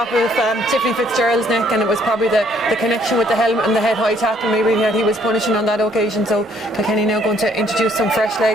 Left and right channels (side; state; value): both; normal; correlation 0.65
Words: of Tiffany Fitzgerald's neck, and it was probably the connection with the helmet and the head high tackle maybe that he was punishing on that occasion. So Kilkenny now going to introduce some fresh